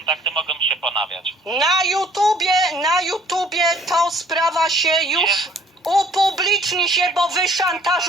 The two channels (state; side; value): normal; both; correlation 0.58